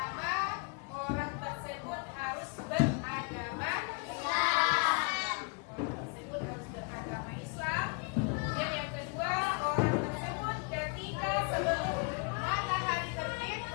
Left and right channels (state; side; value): quieter; right; 35.8 dB